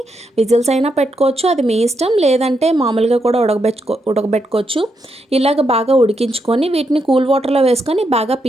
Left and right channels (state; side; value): normal; both; correlation 0.81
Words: విజిల్స్ అయినా పెట్టుకోవచ్చు, అది మీ ఇష్టం. లేదంటే మామూలుగా కూడా ఉడకబెట్టుకోవచ్చు. ఇలాగ బాగా ఉడికించుకొని వీటిని కూల్ వాటర్లో వేసుకొని బాగా